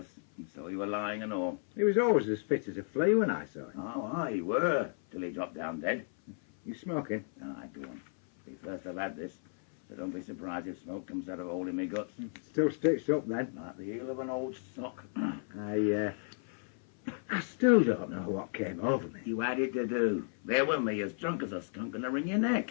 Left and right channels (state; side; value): silent; right; 55 dB below the other